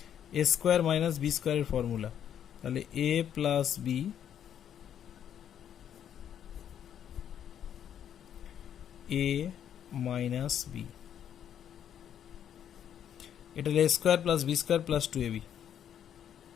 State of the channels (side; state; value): right; quieter; 9.5 dB